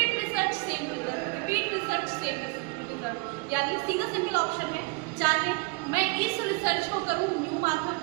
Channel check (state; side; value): quieter; left; 28.5 dB